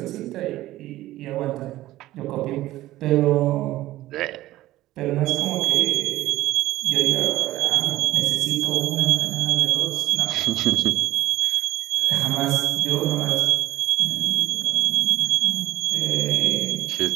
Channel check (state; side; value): quieter; left; 15.8 dB